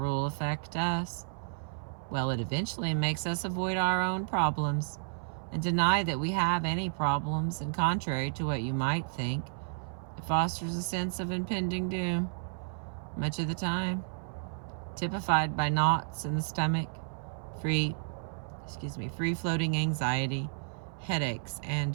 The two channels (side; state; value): left; silent; 56 dB below the other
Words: affect us? Well, it eventually makes us avoid our own problems and deny that we have any problems, and contrary to what you might think, it fosters a sense of impending doom, much of the time, typified by knots in the stomach, free-floating anxiety, headaches,